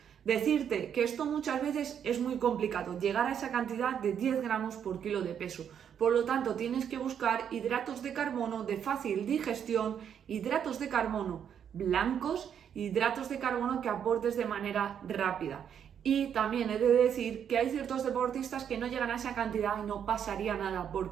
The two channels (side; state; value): left; quieter; 8.5 dB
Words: Decirte que esto muchas veces es muy complicado, llegar a esa cantidad de 10 gramos por kilo de peso. Por lo tanto, tienes que buscar hidratos de carbono de fácil digestión, hidratos de carbono blancos, hidratos de carbono que aportes de manera rápida. Y también he de decir que hay ciertos deportistas que no llegan a esa cantidad y no pasaría nada. ¿Por